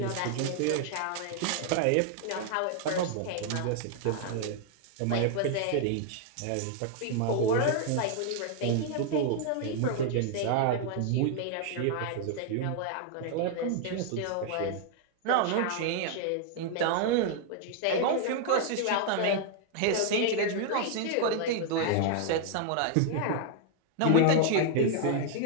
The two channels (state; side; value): different; both; correlation 0.00